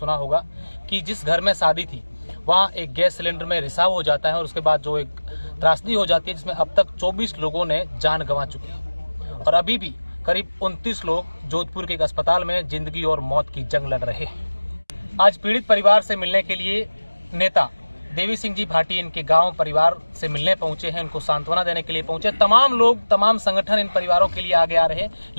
होगा कि जिस घर में शादी थी वहां एक गैस सिलेंडर में रिसाव हो जाता है और उसके बाद जो एक त्रासदी हो जाती है जिसमें अब तक 24 लोगों ने जान गंवा चुकी है और अभी भी करीब 29 लोग जोधपुर के एक अस्पताल में जिंदगी और मौत की जंग लड़ रहे हैं। आज पीड़ित परिवार से मिलने के लिए नेता देवी सिंह जी भाटी इनके गांव परिवार से मिलने पहुंचे हैं, उनको सांत्वना देने के लिए पहुंचे। तमाम लोग, तमाम संगठन इन परिवारों के लिए आगे आ रहे हैं,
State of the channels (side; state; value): both; inverted; correlation -1.00